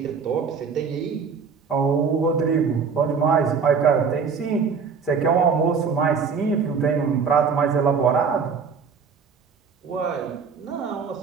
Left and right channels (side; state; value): left; quieter; 5.8 dB